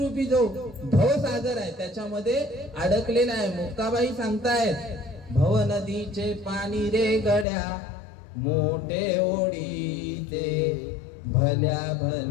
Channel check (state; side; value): drops out; right; at 7.5 s